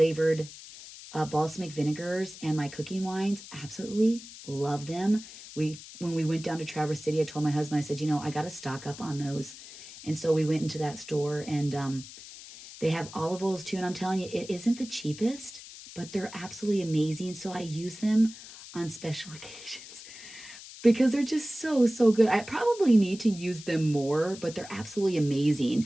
balsamic vinegars and my cooking wines. Absolutely love them. When we went down to Traverse City, I told my husband, I said, I got to stock up on those. And so we went into that store, and they have olive oils too. And I'm telling you, it isn't the cheapest, but they're absolutely amazing. So I use them on special occasions because they're just so, so good. I probably need to use them more, but they're absolutely amazing.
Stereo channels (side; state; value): left; noise; hiss, 15 dB below the sound